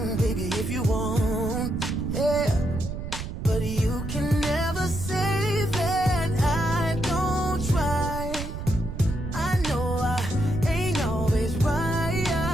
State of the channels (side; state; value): right; noise; rumble, 6 dB below the sound